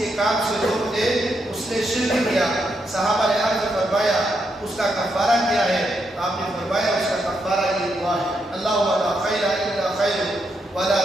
کام سے روک دے اس نے شرک کیا۔ صحابہ نے عرض فرمایا اس کا کفارہ کیا ہے؟ آپ نے فرمایا اس کا کفارہ یہ دعا ہے اللہم لا خیر الا خیر ولا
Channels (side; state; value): both; normal; correlation 0.81